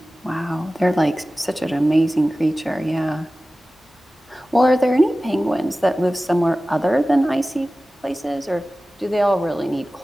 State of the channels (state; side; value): normal; both; correlation 0.96